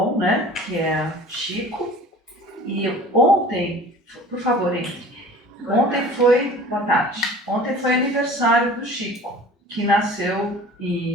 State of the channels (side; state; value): both; normal; correlation 0.44